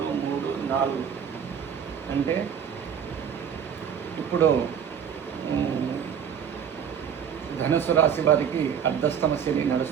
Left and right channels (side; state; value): left; quieter; 8.0 dB